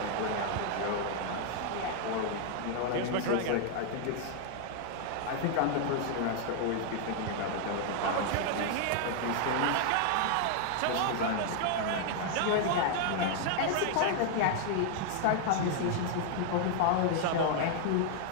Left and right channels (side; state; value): both; different; correlation 0.00